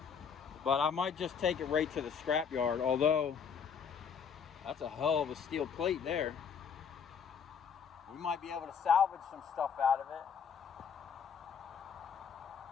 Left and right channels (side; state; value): right; quieter; 6.8 dB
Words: But I might just take it right to the scrap yard, although that's a hell of a steel plate there. We might be able to salvage some stuff out of it.